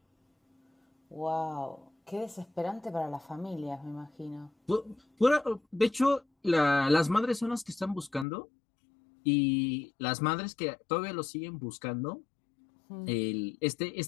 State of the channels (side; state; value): right; drops out; at 8.2 s